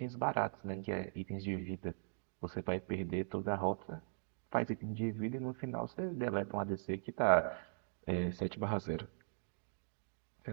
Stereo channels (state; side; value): silent; left; digital silence